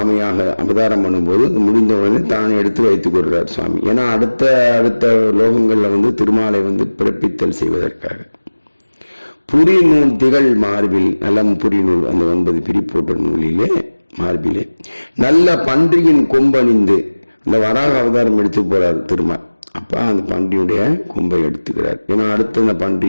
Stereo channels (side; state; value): both; inverted; correlation -1.00